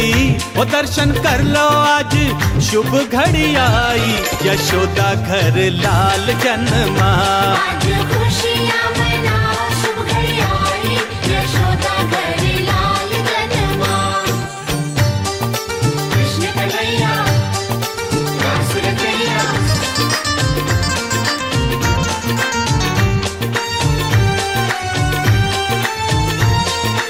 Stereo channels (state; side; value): identical; both; correlation 1.00